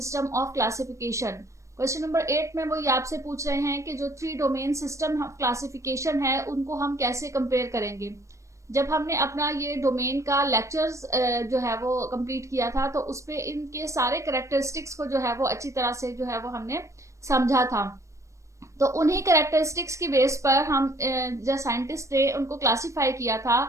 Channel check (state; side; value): late; left; 0.15 ms